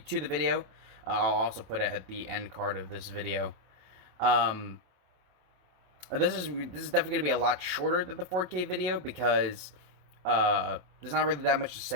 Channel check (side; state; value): left; late; 27 ms